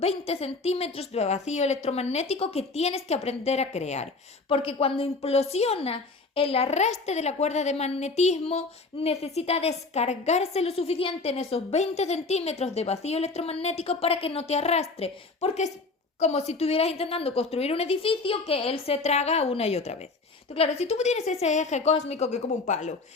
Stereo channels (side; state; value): right; quieter; 3.8 dB